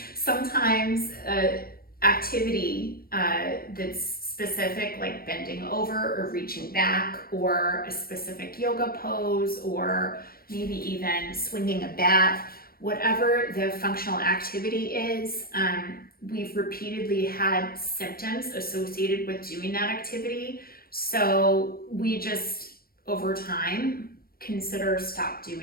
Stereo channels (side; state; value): right; late; 0.43 ms